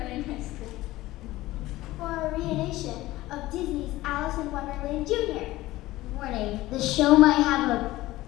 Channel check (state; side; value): quieter; right; 17.3 dB